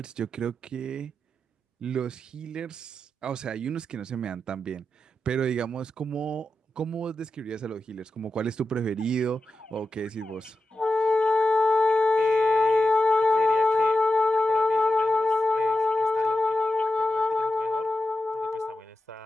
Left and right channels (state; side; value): normal; both; correlation 0.90